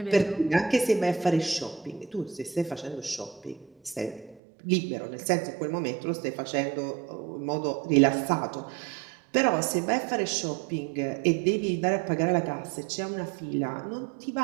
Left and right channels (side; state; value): left; drops out; at 4.4 s